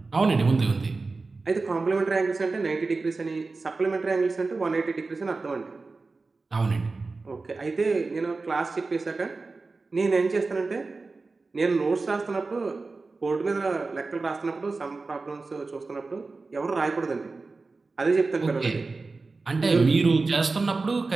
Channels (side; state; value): left; quieter; 3.8 dB